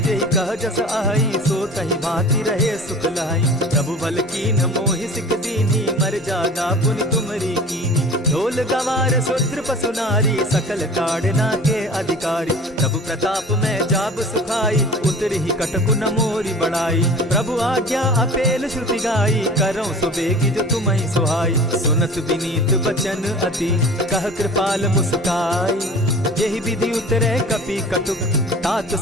कह जस अहई, सो तहि भांति रहे सुख लहई। प्रभु बल कीन मोहि सिख दीनी, मर जादा पुनि तुमरी कीनी। ढोल गवार शूद्र पशु नारी, सकल ताड़ना के अधिकारी। प्रभु प्रताप में जाब सुखाई, उतरि ही कटकु न मोरी बड़ाई। प्रभु आज्ञा अपेल श्रुति गाई, करऊं सुबेगी जो तुम्हि सुहाई। सुनत विनीत बचन अति, कह कृपाल मुस्काई। जेहि विधि उतरे कपि कटुक, तात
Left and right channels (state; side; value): normal; both; correlation 0.41